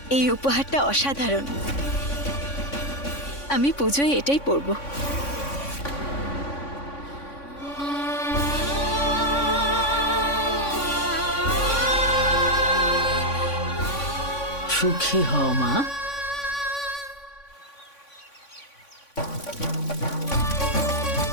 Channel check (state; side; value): late; right; 3.5 ms